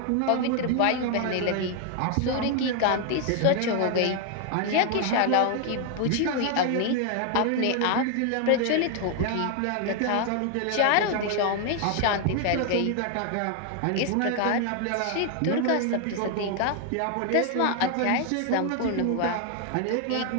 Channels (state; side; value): different; both; correlation 0.00